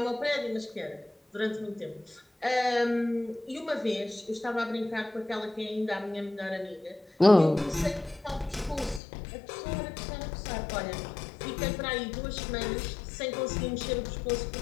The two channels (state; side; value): drops out; right; at 9.0 s